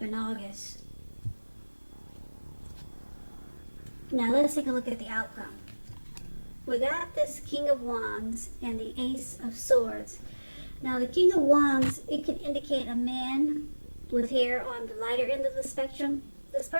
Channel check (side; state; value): both; inverted; correlation -1.00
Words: in August. Now let's take a look at the outcome. We got this King of Wands and the Ace of Swords. Now the King of Wands, it can indicate a man with hair on the lighter end of the spectrum. This